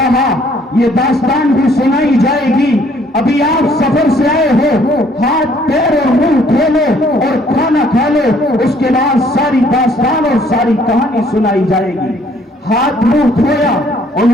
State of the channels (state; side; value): normal; both; correlation 0.62